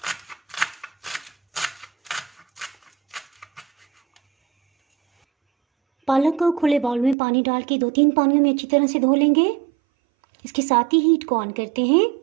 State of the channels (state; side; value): drops out; left; at 7.2 s